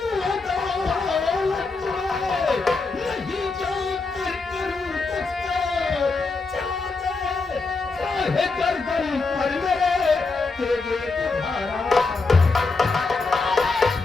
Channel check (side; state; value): right; quieter; 4.0 dB